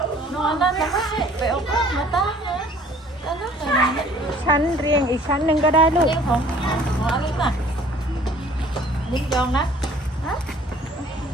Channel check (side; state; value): both; normal; correlation 0.54